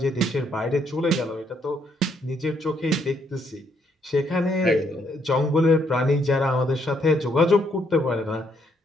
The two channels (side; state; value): both; normal; correlation 0.72